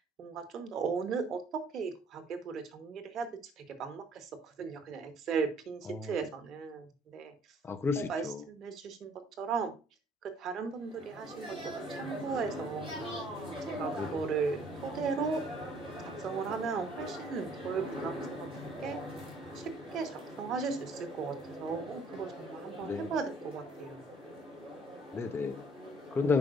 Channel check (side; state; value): both; normal; correlation 0.60